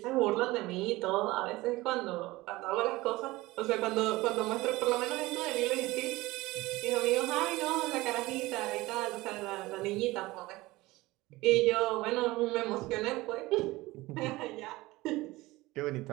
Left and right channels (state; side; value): quieter; left; 19.8 dB